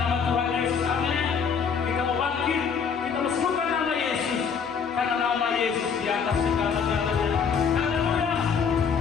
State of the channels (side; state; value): right; quieter; 6.4 dB